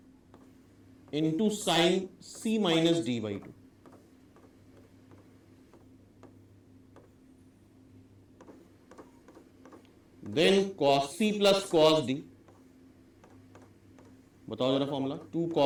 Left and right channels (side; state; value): both; identical; correlation 1.00